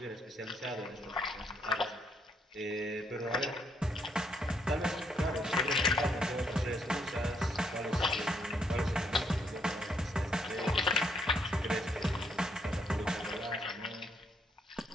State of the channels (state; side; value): normal; both; correlation 0.73